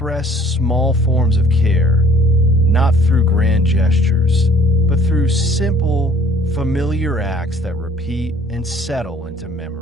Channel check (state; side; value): normal; both; correlation 0.56